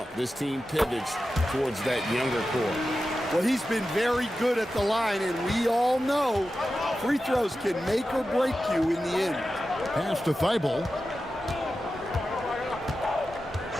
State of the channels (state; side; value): normal; both; correlation 0.92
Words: this team pivots towards that younger core. Well, he's been very good at the line, and we all know free throws can make or break you in the end. Pass to Thibault.